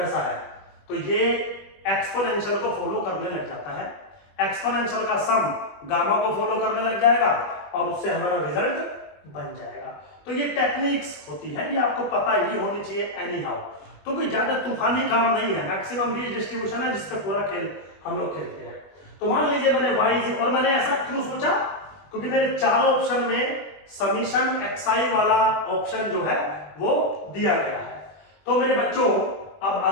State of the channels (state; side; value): late; right; 20 ms